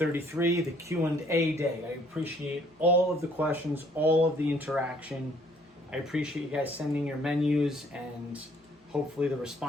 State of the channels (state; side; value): normal; both; correlation 0.62